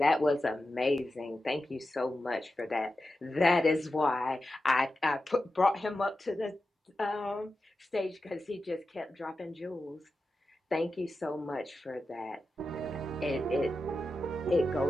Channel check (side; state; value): both; normal; correlation 0.91